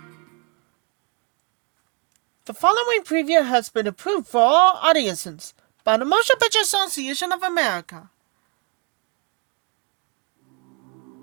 The following preview has been approved for all audiences by the Motion Picture Association of America.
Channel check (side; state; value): left; quieter; 34.8 dB